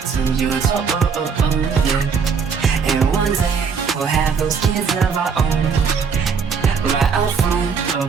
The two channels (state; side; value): quieter; left; 5.9 dB